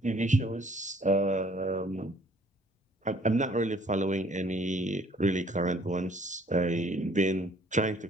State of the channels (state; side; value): normal; both; correlation 0.59